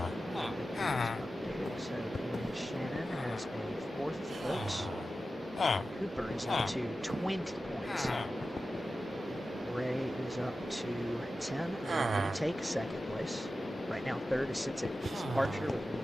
so Shannon has a fourth vote. Cooper is up to 20 points. Ray is up to 10. Will take second place. Right now, third sits at Archer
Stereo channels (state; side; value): normal; both; correlation 0.93